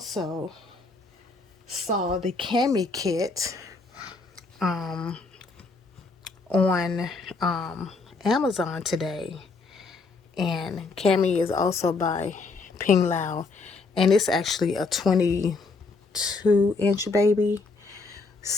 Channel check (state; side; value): quieter; right; 4.0 dB